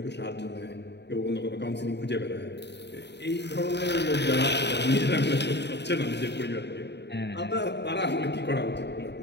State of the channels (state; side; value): late; right; 0.50 ms